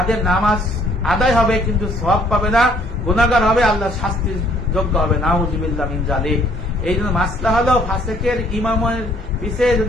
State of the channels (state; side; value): normal; both; correlation 0.62